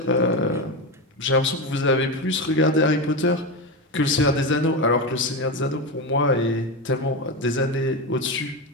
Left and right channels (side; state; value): both; normal; correlation 0.16